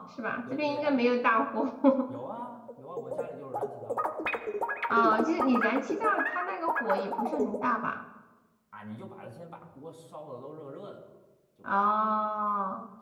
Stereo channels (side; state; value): both; identical; correlation 1.00